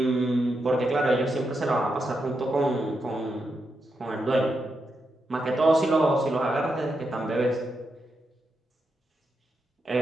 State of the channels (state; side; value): normal; both; correlation 0.85